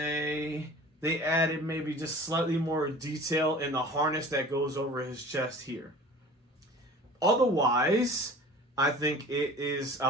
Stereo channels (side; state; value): both; normal; correlation 0.42